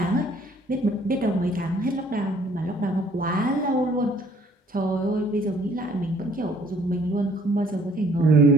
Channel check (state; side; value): normal; both; correlation 0.59